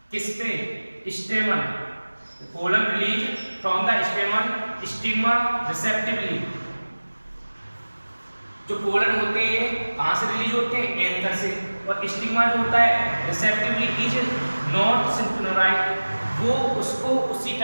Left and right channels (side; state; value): both; inverted; correlation -1.00